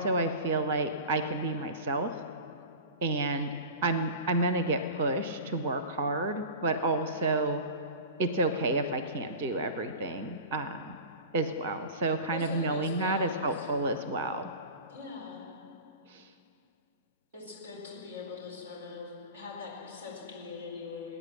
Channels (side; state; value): both; inverted; correlation -0.34